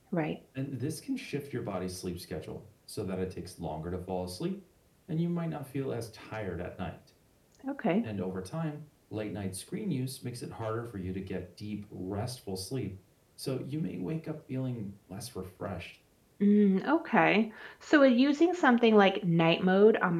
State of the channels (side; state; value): both; identical; correlation 1.00